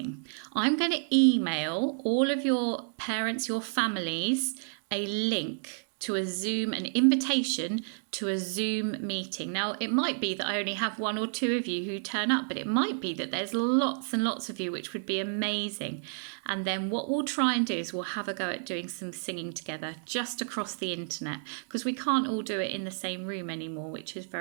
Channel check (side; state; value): left; silent; digital silence